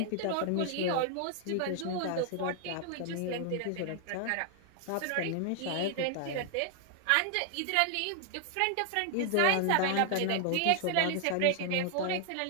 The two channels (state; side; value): different; both; correlation 0.00